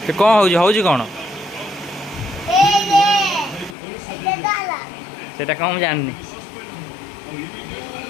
तो कौन हो कौन सेटा कौन जाननी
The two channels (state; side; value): drops out; right; at 3.8 s